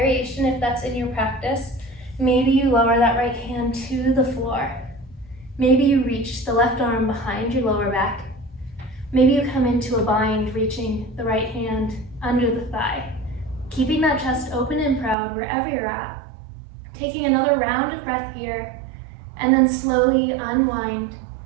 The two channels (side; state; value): left; drops out; at 15.2 s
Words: if that's in your practice. Maybe you lower that right hand to the floor. Maybe you reach the left arm behind your lower back. Maybe you come into a bind, reaching the right hand under the thigh. Keeping that chest open and proud wherever you're at. Taking another round of breath here, and then slowly unwind,